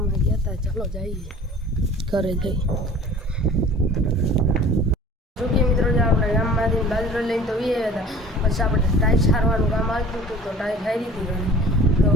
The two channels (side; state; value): both; normal; correlation 0.45